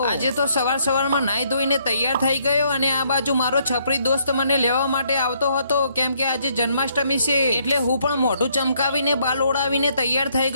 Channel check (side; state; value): both; inverted; correlation -0.69